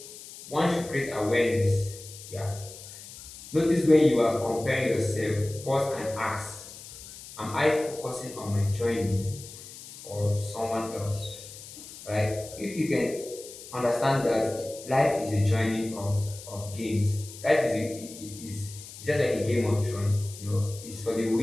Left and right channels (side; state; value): left; noise; hiss, 15 dB below the sound